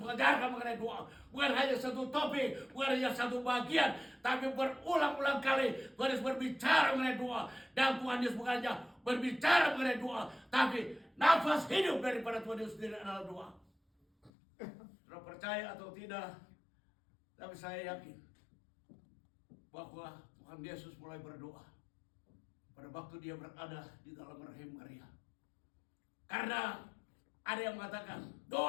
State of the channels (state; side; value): drops out; right; at 14.3 s